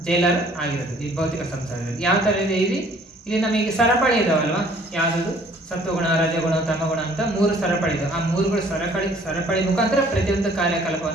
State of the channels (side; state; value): both; normal; correlation 0.57